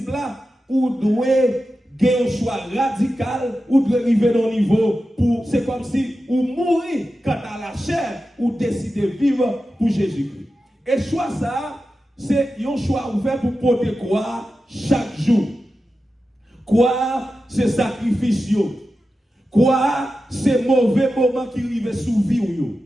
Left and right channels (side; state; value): both; normal; correlation 0.92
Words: là, vous devez gagner un choix radical, ou devez arriver à un niveau pour, c'est comme si vous mourrez quant à la chair, ou décidez de vivre pour Jésus-Christ. Et choix ça, c'est un choix ouvert pour porter quoi chaque jour. Quoi, c'est sacrifice. Quoi, c'est mauvais moment qui arrive sous vie.